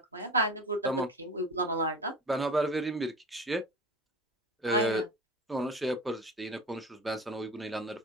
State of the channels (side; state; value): both; normal; correlation 0.33